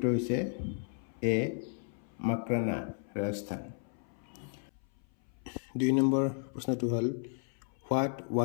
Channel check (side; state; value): right; silent; 55 dB below the other